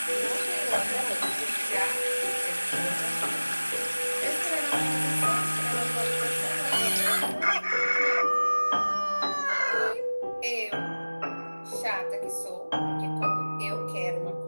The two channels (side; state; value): both; inverted; correlation -1.00